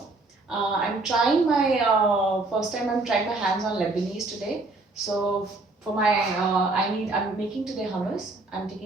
I'm trying my first time. I'm trying my hands on Lebanese today. So for my I'm making today hummus. I'm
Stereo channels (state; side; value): quieter; left; 3.2 dB